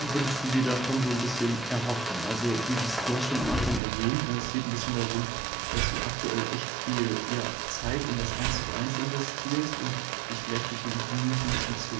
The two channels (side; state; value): left; drops out; at 3.8 s